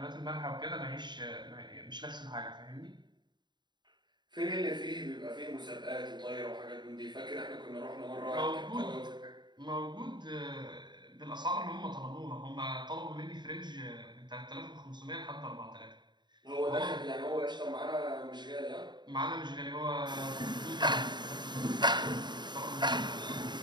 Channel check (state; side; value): late; left; 0.21 ms